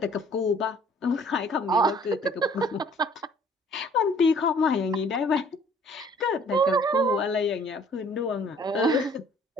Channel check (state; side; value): normal; both; correlation 0.56